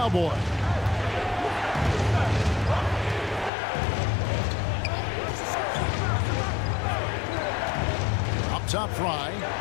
Up top, Fry.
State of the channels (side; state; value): right; drops out; at 3.5 s